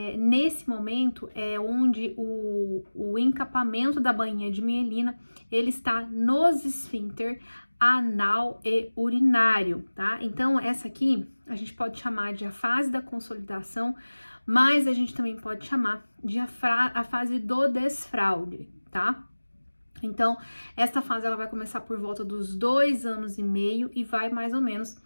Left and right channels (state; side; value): inverted; both; correlation -1.00